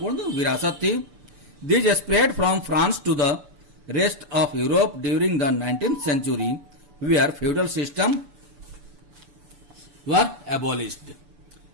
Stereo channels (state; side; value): late; left; 6.9 ms